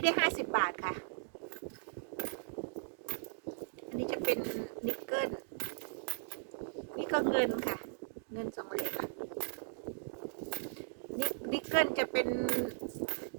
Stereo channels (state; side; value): silent; left; digital silence